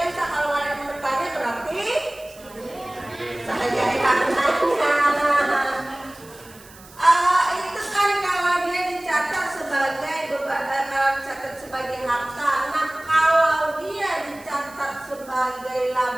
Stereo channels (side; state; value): right; noise; hiss, 22 dB below the sound